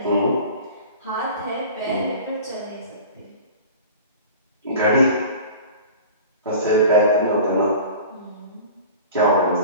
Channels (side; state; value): both; inverted; correlation -0.39